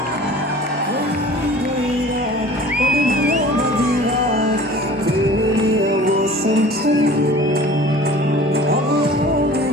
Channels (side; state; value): both; normal; correlation 0.44